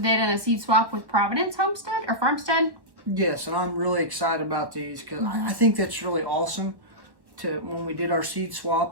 in a seed swap with Providence Homestead or Farmstead. Yes, and I'm really excited about these because I think that's really awesome. When we did our seed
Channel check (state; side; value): late; left; 1.1 ms